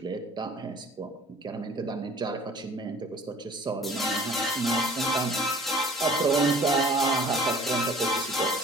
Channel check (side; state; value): both; normal; correlation 0.50